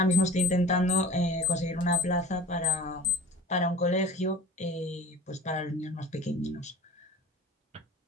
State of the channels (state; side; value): normal; both; correlation 0.38